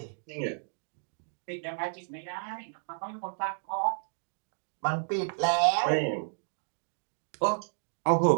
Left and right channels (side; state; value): left; silent; digital silence